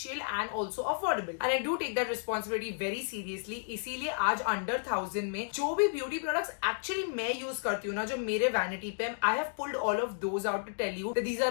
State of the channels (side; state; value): right; silent; digital silence